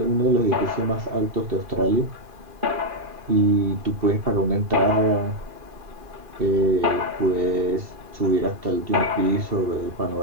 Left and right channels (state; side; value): late; left; 2.4 ms